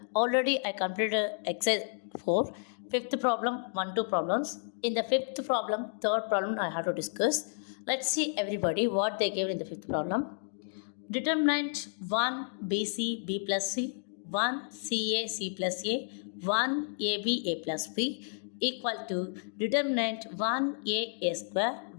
already I completed exercise 4, fifth problem, 1-2 problems. In the fifth problem, third problem I have to discuss. Let's see everybody what they gave in the fifth problem. Determinant 1 BC B plus C, 1 CA C plus A, 1 AB A plus B equal to determinant 1 A square,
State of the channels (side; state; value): right; silent; digital silence